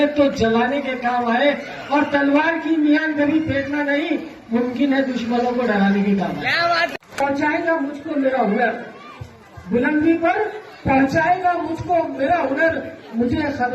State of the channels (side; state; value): both; identical; correlation 1.00